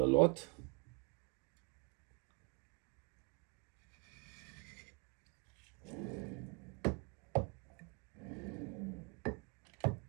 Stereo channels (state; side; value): quieter; left; 32.8 dB